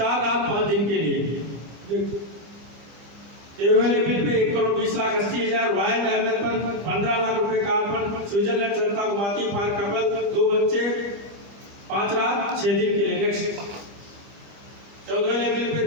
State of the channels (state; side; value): late; left; 25 ms